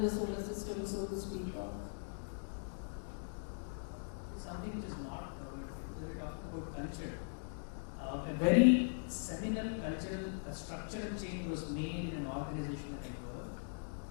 solar system, so to speak of. It's something which is not covered here, because we're talking about culture. A very seminal cultural, structural change was made in an organization that I worked,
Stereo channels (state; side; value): silent; right; digital silence